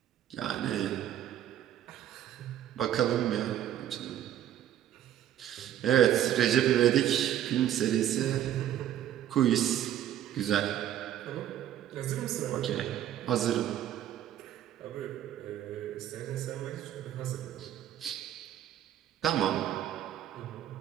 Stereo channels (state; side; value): quieter; left; 11.4 dB